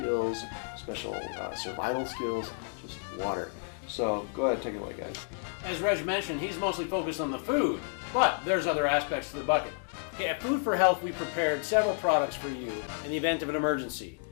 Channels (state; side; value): silent; right; 57 dB below the other